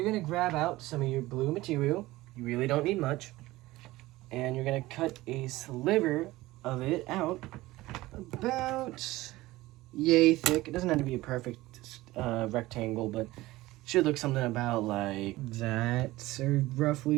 going to grab out some of your blue material. You really don't need much. And you're going to cut a sliver of it out about yay thick. It doesn't have to be a perfect rectangle, but should look something about like that, or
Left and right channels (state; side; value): quieter; left; 18.4 dB